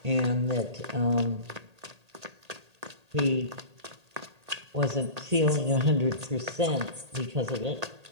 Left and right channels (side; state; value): left; late; 1.8 ms